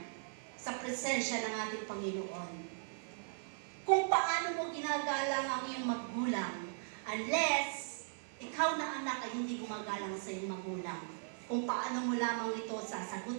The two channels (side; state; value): left; silent; digital silence